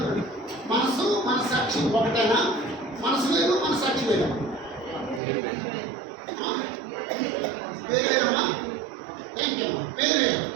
మనసాక్షి ఒకటేనా? మనసు వేరు మనసాక్షి వేరు. వేరేమ్మా, థ్యాంక్ యూ అమ్మా. వేరే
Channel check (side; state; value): left; drops out; at 5.2 s